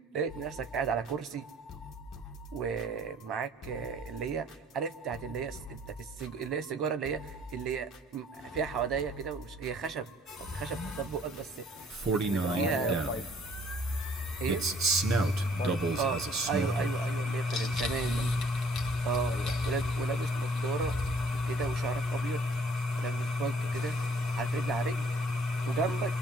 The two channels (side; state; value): both; normal; correlation 0.59